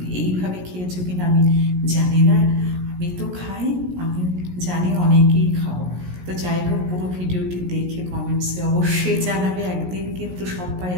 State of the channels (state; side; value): late; left; 17 ms